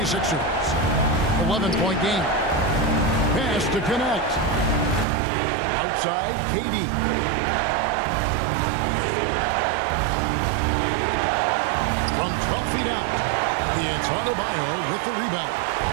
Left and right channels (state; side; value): drops out; left; at 5.1 s